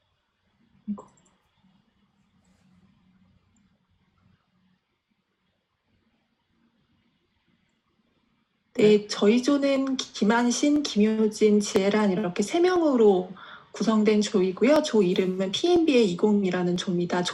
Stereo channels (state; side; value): identical; both; correlation 1.00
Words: 네, 저희 조는 김한신, 김효진, 지혜란 이렇게 3명으로 구성된 조이고요. 조 이름은 PMBA 20이라는 조입니다.